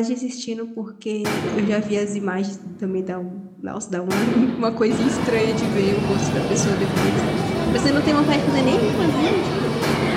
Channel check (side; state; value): both; identical; correlation 1.00